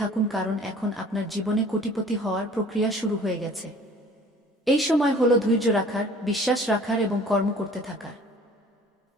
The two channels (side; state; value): both; normal; correlation 0.50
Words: কারণ এখন আপনার জীবনে কোটিপতি হওয়ার প্রক্রিয়া শুরু হয়ে গেছে। এই সময় হলো ধৈর্য রাখার, বিশ্বাস রাখার এবং কর্ম করতে থাকার।